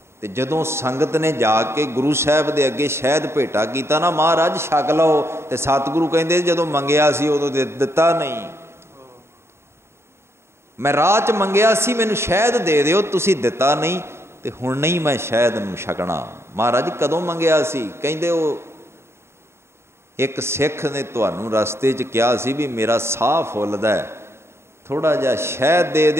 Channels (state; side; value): late; left; 0.12 ms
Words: ਤੇ ਜਦੋਂ ਸੰਗਤ ਨੇ ਜਾ ਕੇ ਗੁਰੂ ਸਾਹਿਬ ਦੇ ਅੱਗੇ ਸ਼ਹਿਦ ਭੇਟਾ ਕੀਤਾ ਨਾ, ਮਹਾਰਾਜ ਛਕ ਲਓ, ਤੇ ਸਤਿਗੁਰੂ ਕਹਿੰਦੇ ਜਦੋਂ ਮੰਗਿਆ ਸੀ ਉਦੋਂ ਦਿੱਤਾ ਨਹੀਂ। ਮੈਂ ਰਾਹ 'ਚ ਮੰਗਿਆ ਸੀ ਮੈਨੂੰ ਸ਼ਹਿਦ ਦੇ ਦਿਓ, ਤੁਸੀਂ ਦਿੱਤਾ ਨਹੀਂ, ਤੇ ਹੁਣ ਨਹੀਂ ਮੈਂ ਸ਼ਹਿਦ ਨੂੰ ਛਕਣਾ। ਮਹਾਰਾਜ ਕਦੋਂ ਮੰਗਿਆ ਸੀ? ਕਹਿੰਦੇ ਉਹ ਇੱਕ ਸਿੱਖ ਨੇ ਤੁਹਾਨੂੰ ਰਸਤੇ 'ਚ ਕਿਹਾ ਸੀ ਵੀ ਮੇਰਾ ਸਾਹ ਫੁੱਲਦਾ, ਥੋੜ੍ਹਾ ਜਿਹਾ ਸ਼ਹਿਦ ਦੇ